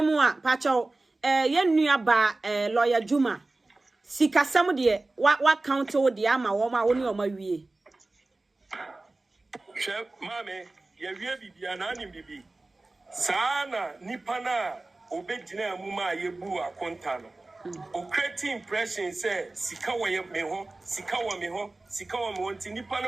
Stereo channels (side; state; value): left; quieter; 3.1 dB